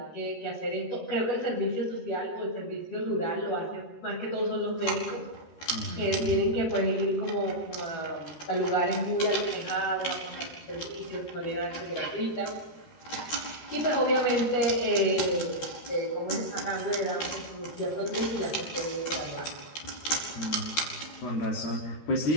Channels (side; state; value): right; late; 13 ms